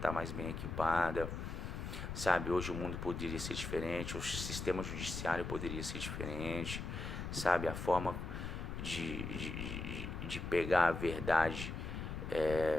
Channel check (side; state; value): left; noise; rumble, 5 dB below the sound